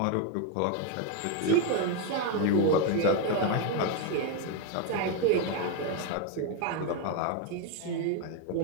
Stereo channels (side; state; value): both; different; correlation 0.02